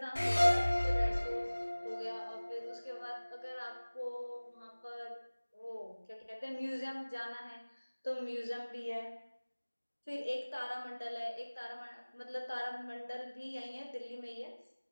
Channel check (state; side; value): inverted; both; correlation -1.00